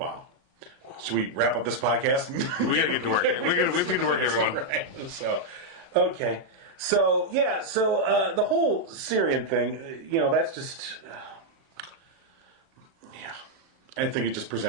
Should we wrap up this podcast? We got to get to work. We have to get to work, everyone. Right. So, okay. So, the whole Syrian thing, that's just... I think it just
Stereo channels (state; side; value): late; left; 36 ms